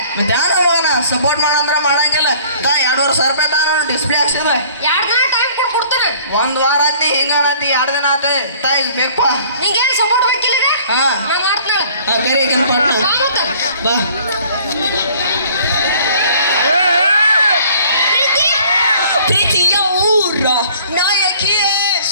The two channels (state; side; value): inverted; both; correlation -0.54